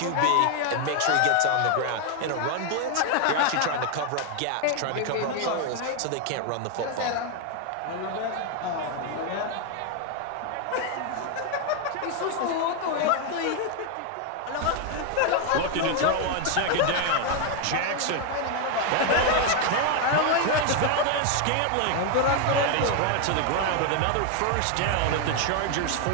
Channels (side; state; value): both; different; correlation 0.01